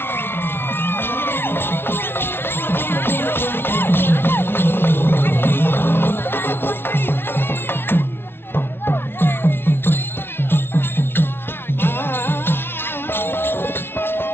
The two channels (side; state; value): right; late; 0.11 ms